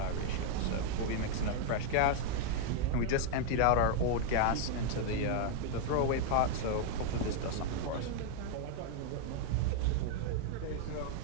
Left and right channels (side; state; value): both; different; correlation 0.00